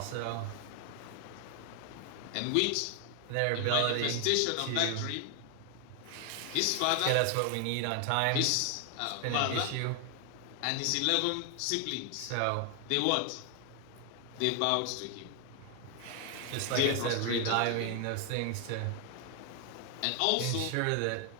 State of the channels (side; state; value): both; different; correlation 0.00